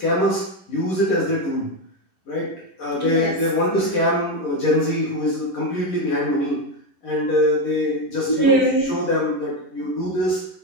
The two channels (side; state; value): right; late; 11 ms